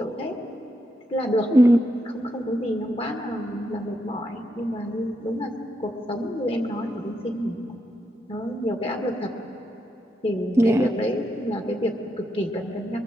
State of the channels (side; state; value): both; normal; correlation 0.82